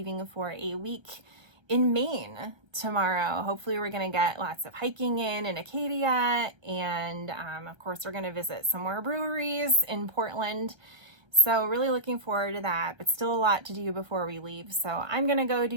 for a week in Maine tomorrow. Hopefully we're going to get lots of hiking in Acadia, and of course we're going to visit some more breweries in Portland. So really looking forward to that, but still a lot to do before we leave. So I'm going to go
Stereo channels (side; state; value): left; late; 1.3 ms